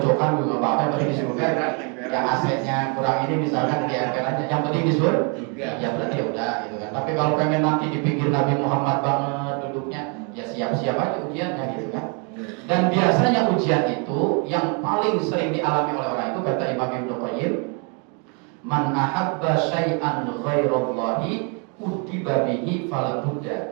juga apa-apa, yang penting di surga. Yang asetnya kurang ini misalkan di MPL aja, yang penting di surga. Ya berarti ya udah gitu kan. Tapi kalau pengen nanti di pinggir Nabi Muhammad banget duduknya, ya siap-siap aja ujiannya gitu kan. Dan biasanya ujian itu yang paling sering dialami oleh orang itu, kata Imam Ibnu Qayyim, man ahabba syai'an ghairallahi udiba bihi fala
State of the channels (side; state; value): left; quieter; 36.3 dB